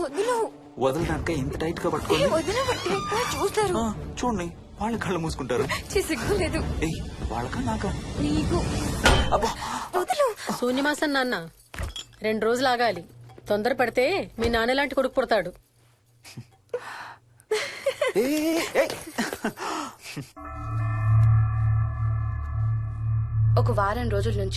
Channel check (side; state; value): both; identical; correlation 1.00